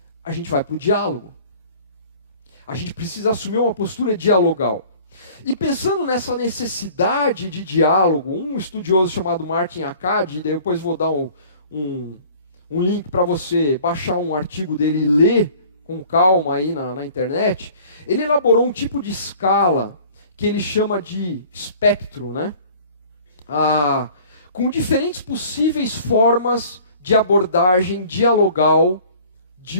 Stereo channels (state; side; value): inverted; both; correlation -0.49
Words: A gente vai para o diálogo. A gente precisa assumir uma postura dialogal. E pensando nessa necessidade de diálogo, um estudioso chamado Martin Akkad, depois vou dar um link para você baixar um artigo dele e ler com calma aí na internet, ele elaborou um tipo de escala que ele chama de espectro, com diferentes possíveis formas de abordagem dialogal